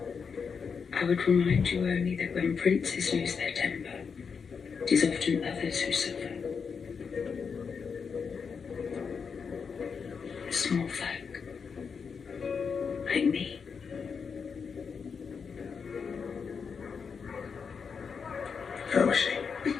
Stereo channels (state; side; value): quieter; right; 5.9 dB